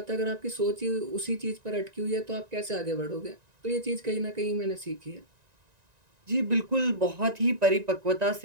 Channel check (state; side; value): late; left; 1.9 ms